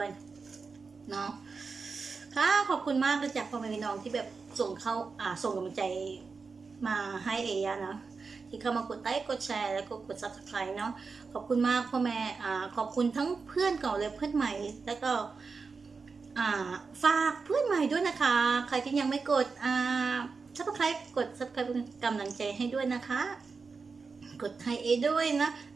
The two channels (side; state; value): left; quieter; 4.7 dB